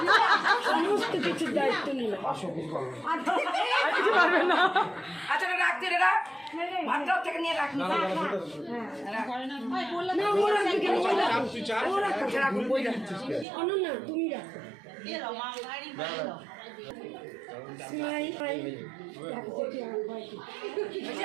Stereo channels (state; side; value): drops out; left; at 13.5 s